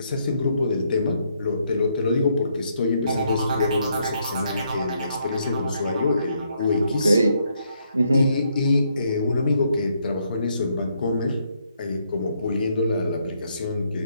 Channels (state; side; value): inverted; both; correlation -0.74